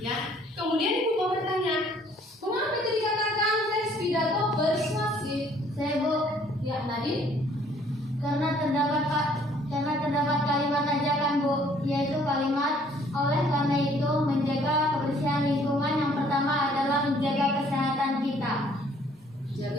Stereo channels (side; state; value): both; normal; correlation 0.60